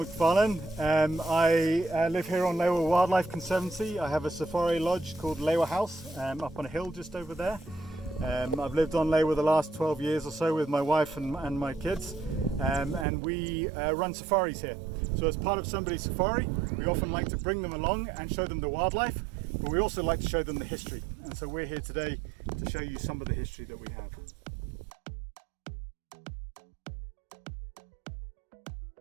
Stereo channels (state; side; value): drops out; left; at 13.1 s